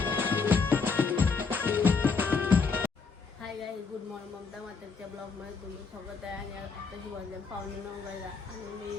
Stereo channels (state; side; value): quieter; right; 4.9 dB